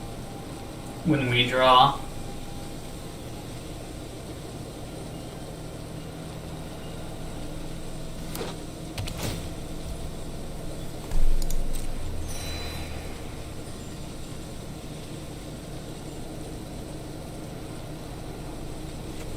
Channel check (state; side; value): identical; both; correlation 1.00